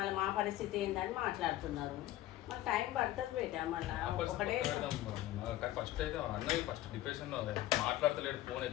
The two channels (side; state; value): right; quieter; 14.9 dB